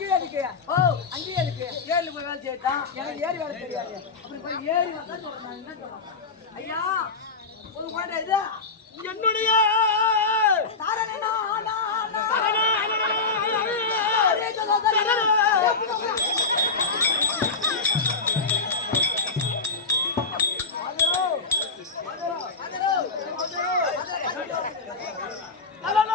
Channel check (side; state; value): right; quieter; 4.2 dB